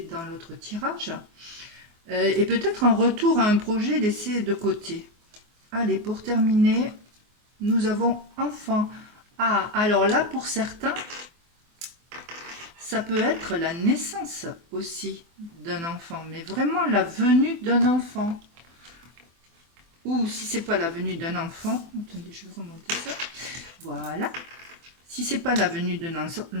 dans l'autre tirage, et peut-être un retour à un projet laissé de côté. Allez, pour terminer, nous avons enfant. Ah, alors là, pour certains, ça peut être la naissance aussi d'un enfant, mais vraiment la venue d'un enfant. Ou si c'est pas la venue d'un enfant, attendez, je vais remonter ça. Voilà. Si c'est pas la venue d'un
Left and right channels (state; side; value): late; left; 24 ms